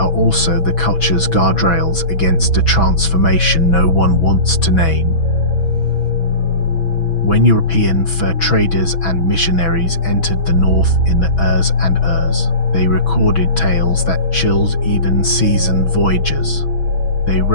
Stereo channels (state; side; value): late; right; 6.1 ms